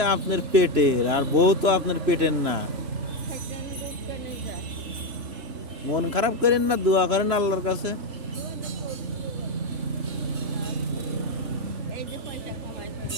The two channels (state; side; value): late; left; 3.0 ms